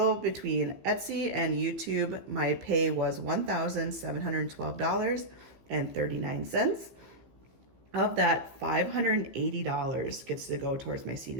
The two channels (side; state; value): left; late; 15 ms